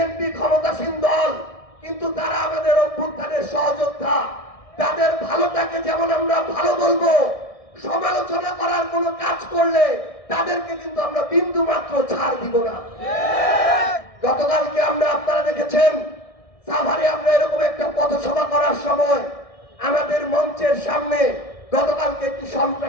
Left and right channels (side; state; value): right; late; 1.6 ms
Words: ক্ষমতাসীন দল, কিন্তু তারা আমাদের অভ্যুত্থানের সহযোদ্ধা। তাদের ভালোটাকে যেমন আমরা ভালো বলবো, সমালোচনা করার কোনো কাজ করলে তাদেরকে কিন্তু আমরা বিন্দু মাত্র ছাড় দিব না। গতকালকে আপনারা দেখেছেন সাভারে আমরা এরকম একটা পথসভা করার সময় আমাদের মঞ্চের সামনে গতকালকে একটি